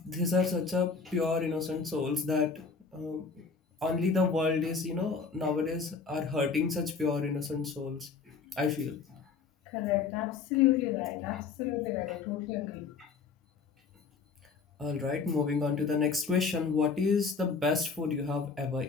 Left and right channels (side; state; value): right; quieter; 5.1 dB